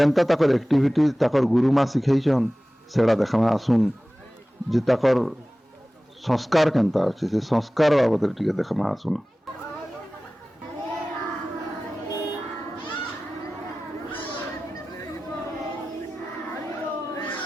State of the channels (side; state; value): both; normal; correlation 0.97